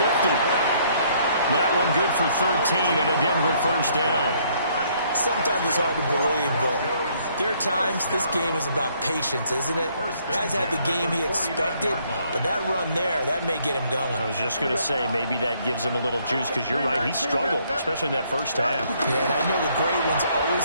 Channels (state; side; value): inverted; both; correlation -0.66